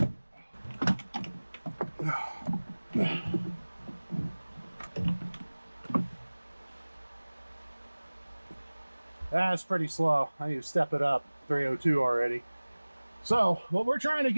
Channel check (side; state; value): both; inverted; correlation -1.00